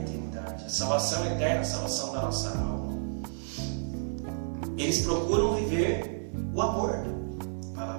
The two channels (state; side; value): silent; left; digital silence